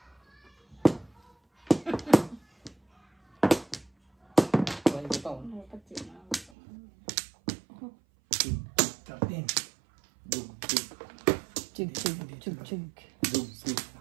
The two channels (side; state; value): left; drops out; at 6.5 s